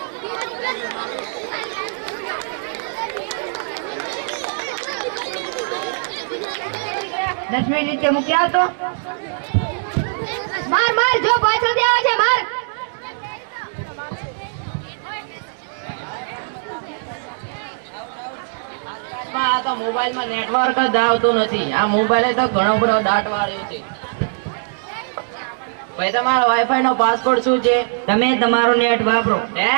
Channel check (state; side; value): silent; left; digital silence